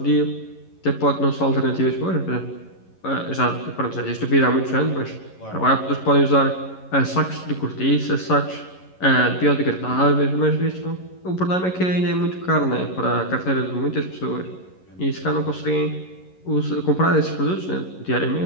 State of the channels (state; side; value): late; right; 11 ms